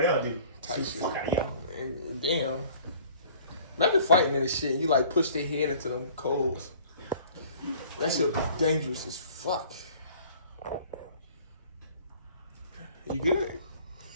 else, dude? Tight shit. Fuck out of here. Damn. Imagine fighting in this shit and you like push their head into them coals. That shit dangerous as fuck. You good?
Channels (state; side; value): inverted; both; correlation -0.51